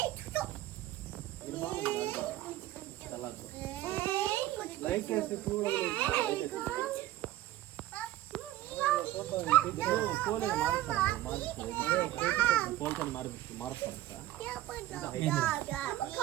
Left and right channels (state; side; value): quieter; left; 14.7 dB